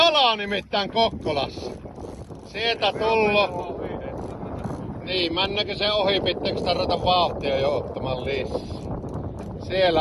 nimittäin Kokkolassa. Sieltä tullo. Niin, männäkö se ohi, pitääkö sitä ruveta vauhtia jo ottamaan lisää? Siellä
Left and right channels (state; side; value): identical; both; correlation 1.00